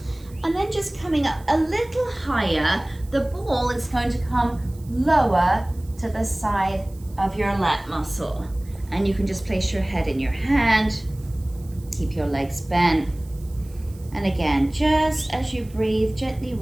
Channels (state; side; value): noise; right; hiss, 26 dB below the sound